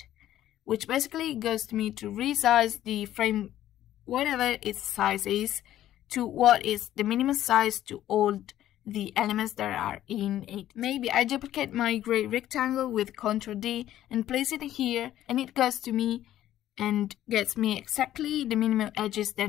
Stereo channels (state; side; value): quieter; right; 12.7 dB